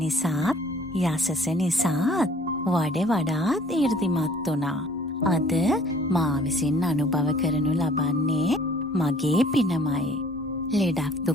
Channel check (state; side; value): normal; both; correlation 0.55